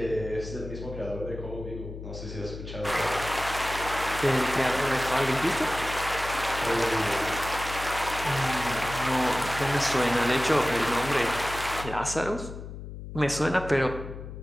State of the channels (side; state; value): left; noise; hum, 10 dB below the sound